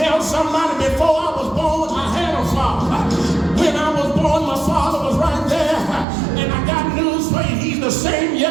somebody, before I was born, I had a Father. When I was born, my Father was right there. And I got news for you, he's the same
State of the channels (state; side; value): drops out; left; at 6.1 s